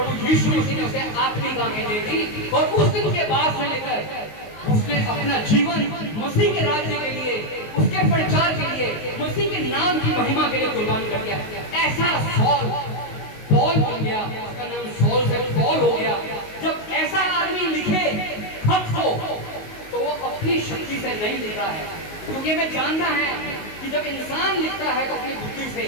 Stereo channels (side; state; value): right; late; 19 ms